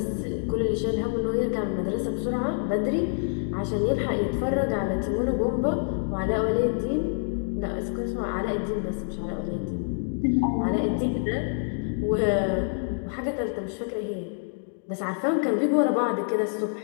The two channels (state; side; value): silent; right; digital silence